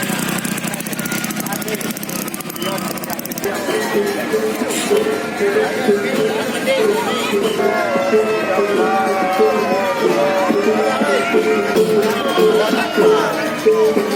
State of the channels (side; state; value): both; identical; correlation 1.00